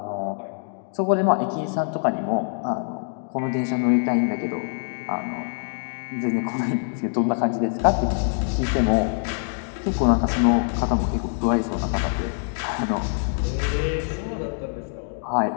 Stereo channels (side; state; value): right; silent; digital silence